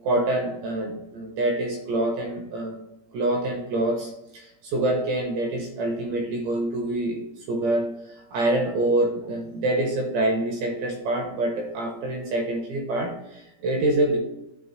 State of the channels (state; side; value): late; left; 17 ms